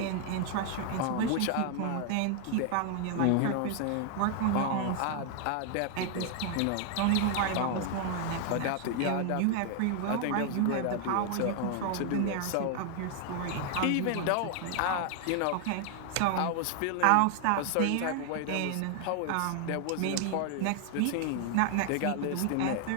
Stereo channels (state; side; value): different; both; correlation 0.00